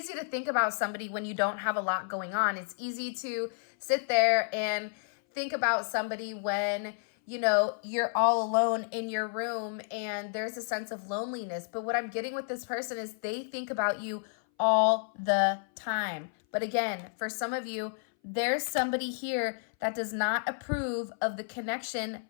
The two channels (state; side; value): silent; right; 57 dB below the other